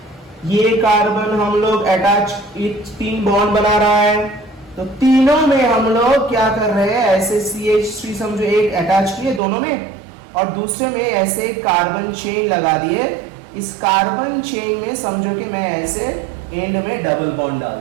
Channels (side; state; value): left; drops out; at 9.4 s